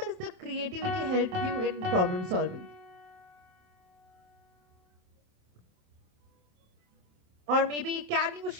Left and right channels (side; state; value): left; late; 27 ms